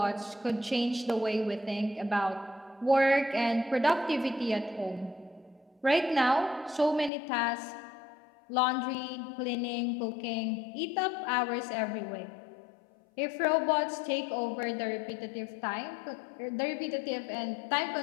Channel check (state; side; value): drops out; right; at 7.1 s